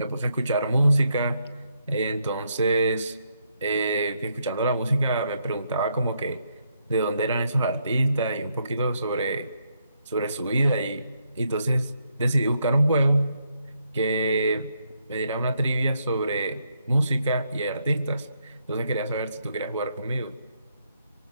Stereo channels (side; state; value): both; inverted; correlation -0.76